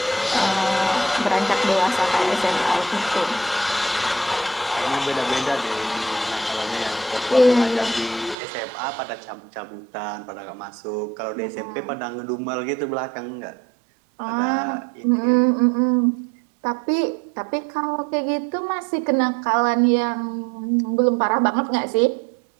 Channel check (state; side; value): drops out; left; at 8.3 s